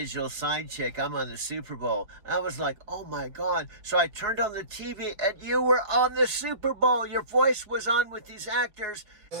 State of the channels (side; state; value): left; late; 4.7 ms